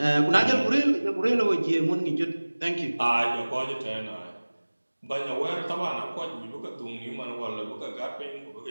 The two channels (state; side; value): inverted; both; correlation -1.00